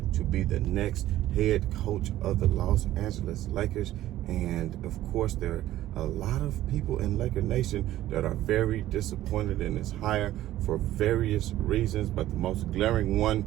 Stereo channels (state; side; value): quieter; left; 14.2 dB